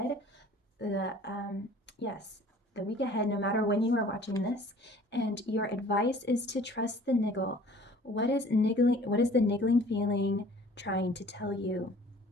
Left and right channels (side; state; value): both; normal; correlation 0.51